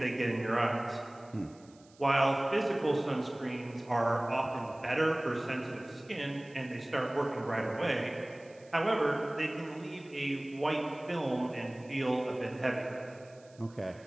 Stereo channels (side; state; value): right; noise; hiss, 28 dB below the sound